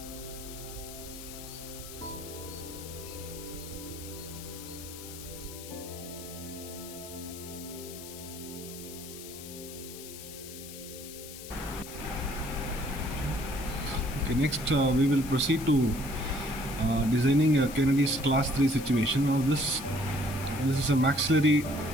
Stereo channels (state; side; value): noise; left; hiss, 13 dB below the sound